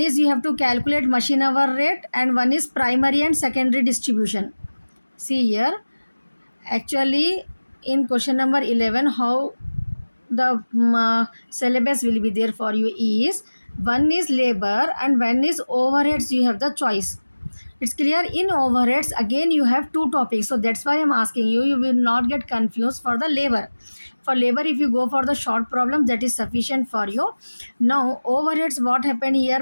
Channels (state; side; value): inverted; both; correlation -1.00